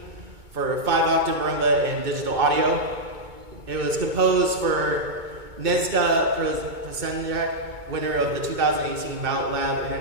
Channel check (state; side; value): late; left; 2.2 ms